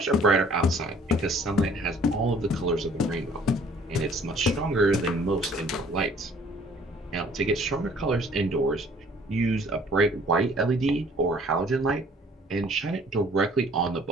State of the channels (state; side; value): normal; both; correlation 0.56